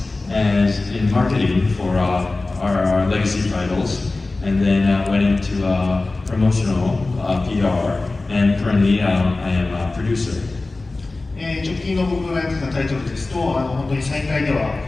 as in marketing for our legacy titles, and then went into promotional PR, and currently I am a producer. 直近の僕がやってたタイトルですと、本当に再開では、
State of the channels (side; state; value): right; quieter; 3.3 dB